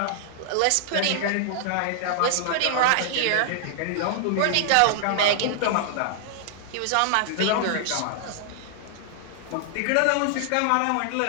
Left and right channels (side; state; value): both; different; correlation -0.01